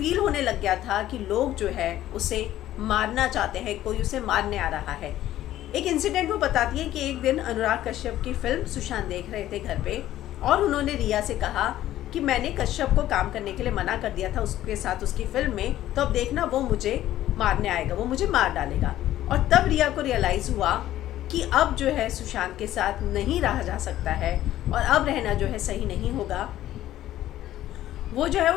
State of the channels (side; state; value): right; quieter; 13.5 dB